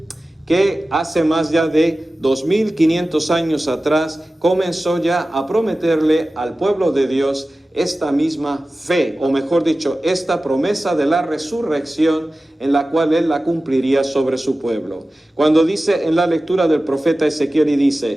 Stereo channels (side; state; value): both; normal; correlation 0.95